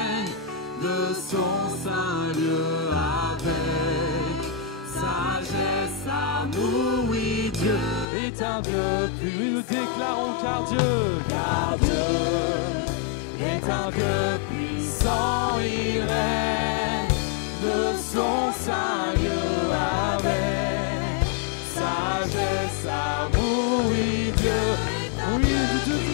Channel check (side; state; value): right; drops out; at 8.1 s